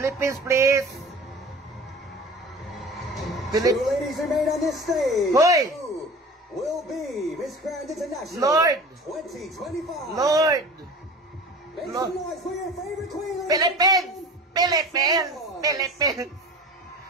please! Two ladies remain on this stage. Hoy! Who will be Miss Grand International Lord! 2025? Lord! Make Lord. some noise for your favorite queen. ladies and Philippines! gentlemen. Philippines! Philippines!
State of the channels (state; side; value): normal; both; correlation 0.39